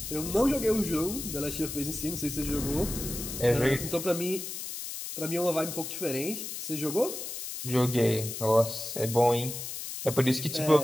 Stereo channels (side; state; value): left; noise; hiss, 7 dB below the sound